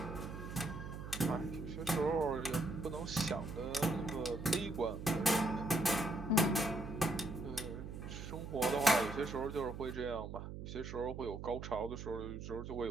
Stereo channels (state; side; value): noise; right; hum, 8 dB below the sound